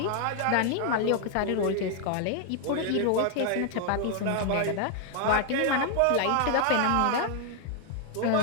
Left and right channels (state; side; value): different; both; correlation 0.00